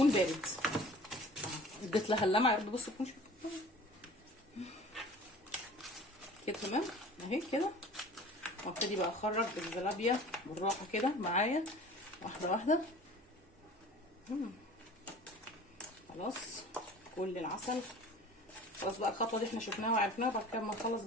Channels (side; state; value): both; normal; correlation 0.44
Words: بارد. اديت لها اللمعه يا رب بصوا تكونوا كده تمام اهي كده. وابتدي بقى اخرج الزلابيه بالراحه كده معايا واحده واحده. خلاص كل العسل خلاص بقى. الخطوه دي احنا شفناها وعرفناها. بعد كده ما نخلص